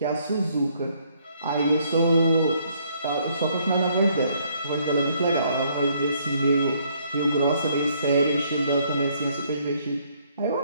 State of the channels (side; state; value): both; inverted; correlation -0.67